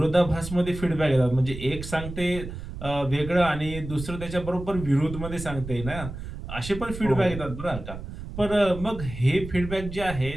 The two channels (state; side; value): noise; right; rumble, 10 dB below the sound